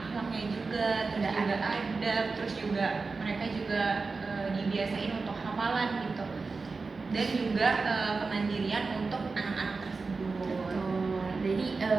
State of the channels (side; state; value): left; quieter; 4.2 dB